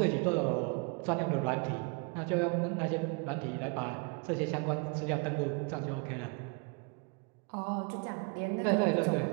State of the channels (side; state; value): left; quieter; 32.4 dB